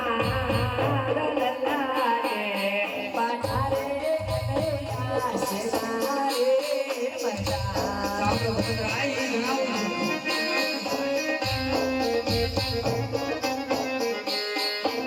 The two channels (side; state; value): both; identical; correlation 1.00